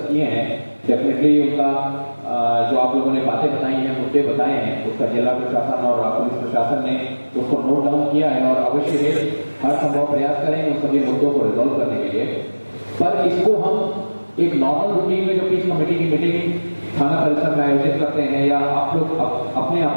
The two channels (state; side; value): inverted; both; correlation -1.00